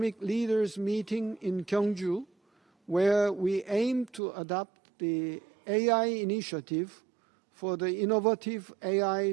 Leaders Meeting in Gyeongju, where we aim to adopt the AI initiative for the innovative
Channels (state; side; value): drops out; left; at 4.2 s